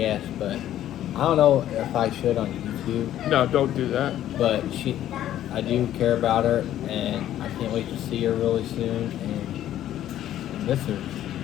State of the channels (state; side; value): quieter; right; 12.2 dB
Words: but I don't know if I should on YouTube. No, don't do that. But I do care about her, and I can't wait to see her really soon, and miss her.